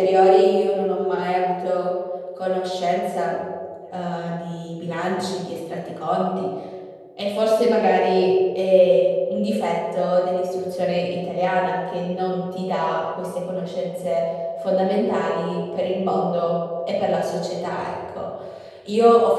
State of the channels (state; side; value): identical; both; correlation 1.00